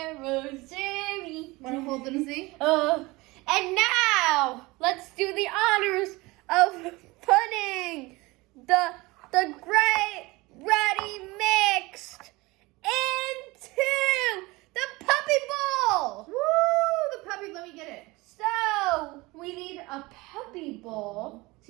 Jerry. Want to hold them, see? And now, let's do the honors of putting the great ready mixed into the puppy bowl. Woo! The puppy, let me get it. So, we need a puppy bowl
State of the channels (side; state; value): left; quieter; 22.5 dB